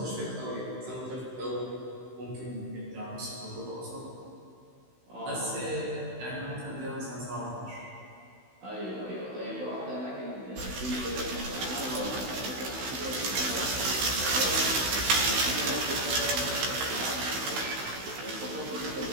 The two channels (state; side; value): late; left; 16 ms